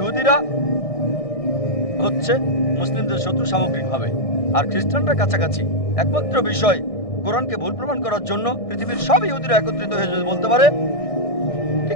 হচ্ছে মুসলিমদের শত্রু সামগ্রিকভাবে, আর খ্রিস্টানরা কাছাকাছি। একমাত্র বিষয় কোরআনকে ভুল প্রমাণ করার জন্য পৃথিবীর সব ইহুদিরা একত্রিত হয়ে যদি বলতে পারে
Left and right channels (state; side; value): late; right; 1.6 ms